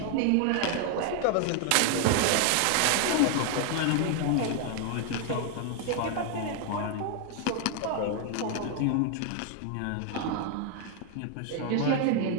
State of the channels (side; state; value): both; different; correlation 0.00